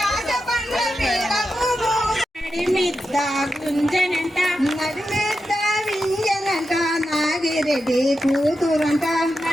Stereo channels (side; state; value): both; normal; correlation 0.89